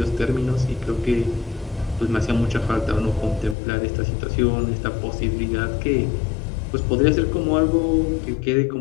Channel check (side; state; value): right; drops out; at 3.6 s